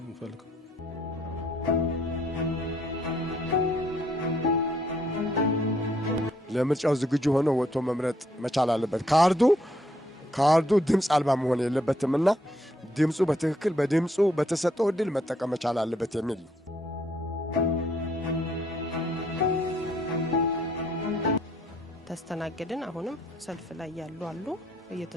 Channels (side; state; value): both; normal; correlation 0.69